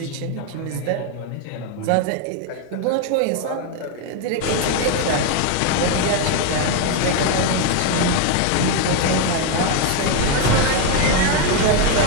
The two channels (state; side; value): different; both; correlation 0.01